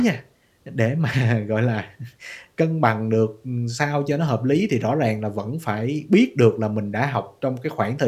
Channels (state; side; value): identical; both; correlation 1.00